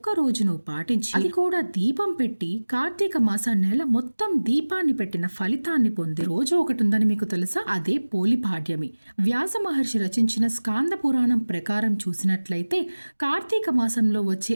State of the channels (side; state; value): both; inverted; correlation -1.00